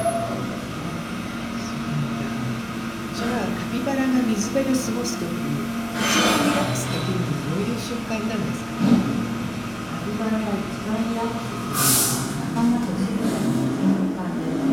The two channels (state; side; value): noise; left; hum, 25 dB below the sound